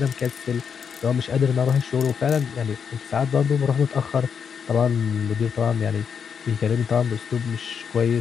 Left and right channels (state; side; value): quieter; right; 6.8 dB